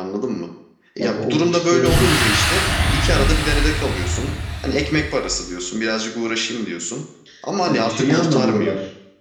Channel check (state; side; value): identical; both; correlation 1.00